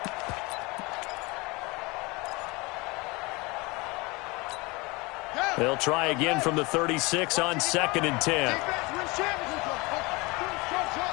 They'll try again from the 36 on 2nd and 10.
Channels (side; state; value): right; quieter; 25.0 dB